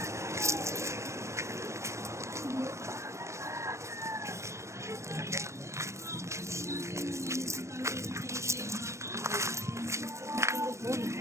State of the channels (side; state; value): left; late; 0.14 ms